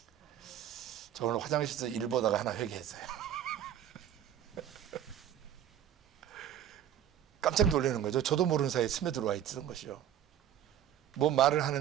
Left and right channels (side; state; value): left; quieter; 10.5 dB